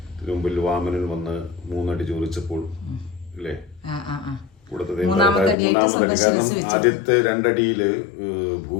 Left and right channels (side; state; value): right; drops out; at 5.6 s